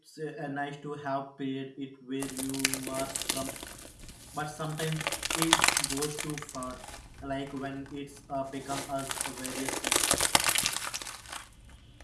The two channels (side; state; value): both; identical; correlation 1.00